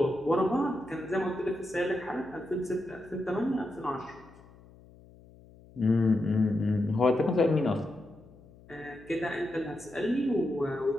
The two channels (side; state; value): left; noise; hum, 23 dB below the sound